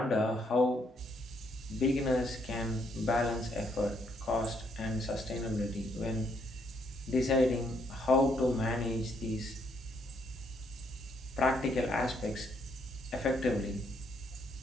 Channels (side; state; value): both; normal; correlation 0.72